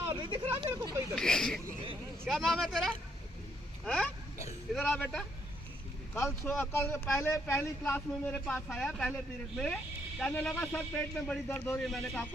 नहीं दिख रहा मेरे को कोई इधर। क्या नाम है तेरा? हैं? इधर आ बेटा। कल पहली क्लास में मेरे पास आया, पहले पीरियड में, कहने लगा सर पेट में बड़ी दर्द हो रही है। मैंने कहा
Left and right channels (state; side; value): normal; both; correlation 0.72